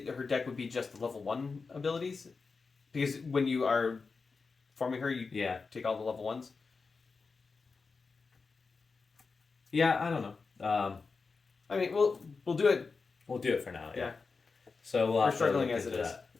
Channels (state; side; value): quieter; right; 4.6 dB